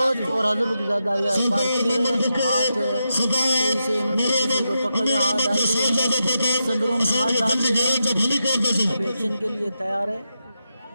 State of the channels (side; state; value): both; inverted; correlation -0.87